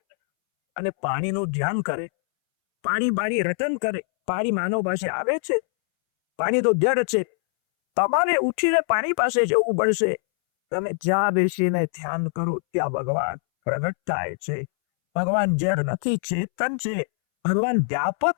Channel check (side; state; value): right; silent; 63 dB below the other